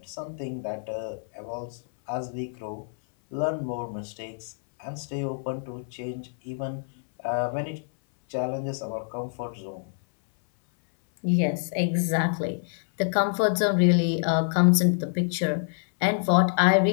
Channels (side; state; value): right; silent; 60 dB below the other